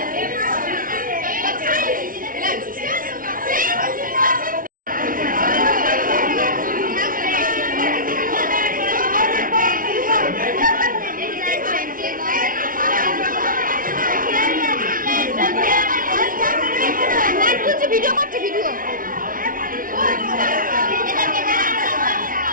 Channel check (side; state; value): left; late; 0.40 ms